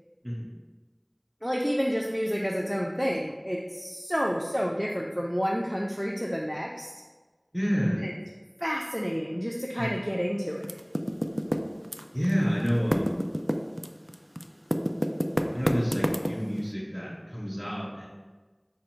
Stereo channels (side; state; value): both; identical; correlation 1.00